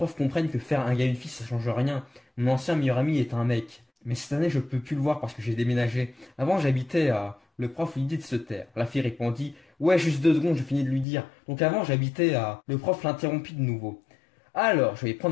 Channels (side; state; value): right; drops out; at 11.1 s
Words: comprennent que faire un gars et une fille ça change rien. Mon ancien meilleur ami est un mec. Mais cette année je peux plus le voir parce que j'ai déménagé. Avant j'habitais à... Le prof lui dit de se taire. La fille répondit: ouais, juste 2 secondes, je finis de lui dire. Donc avant j'habitais à... Le prof l'interrompit de nouveau. Alors, je vais